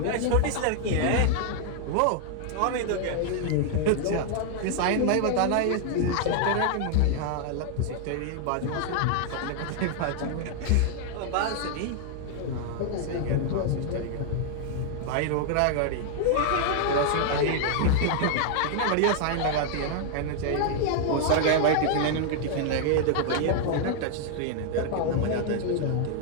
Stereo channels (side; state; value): both; different; correlation 0.00